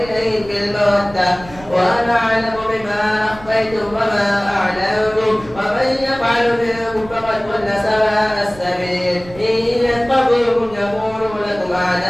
إليهم بالمودة وأنا أعلم بما أخفيتم وما أعلنتم ومن يفعل منكم فقد ضل سواء السبيل إن يتقوكم يكونوا لكم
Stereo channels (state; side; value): noise; right; rumble, 18 dB below the sound